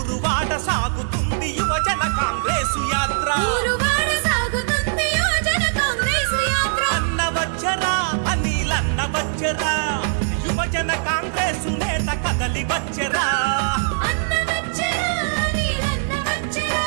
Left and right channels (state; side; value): silent; left; digital silence